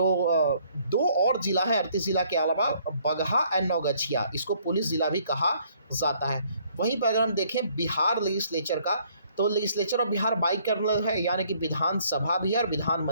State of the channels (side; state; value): both; inverted; correlation -0.63